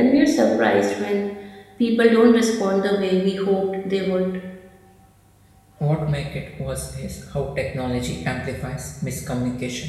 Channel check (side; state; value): both; identical; correlation 1.00